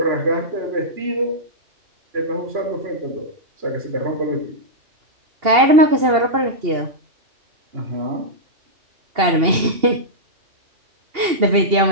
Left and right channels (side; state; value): left; late; 2.8 ms